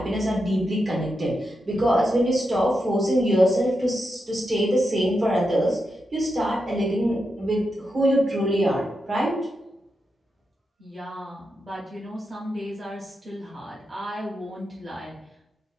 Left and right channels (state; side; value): normal; both; correlation 0.87